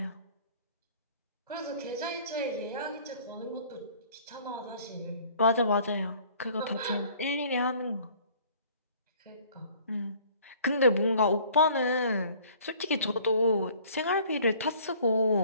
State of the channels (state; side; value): inverted; both; correlation -0.53